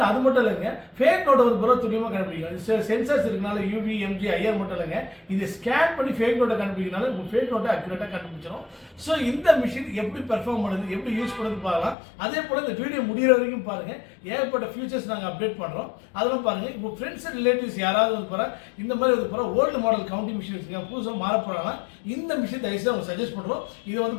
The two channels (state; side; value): drops out; right; at 12.0 s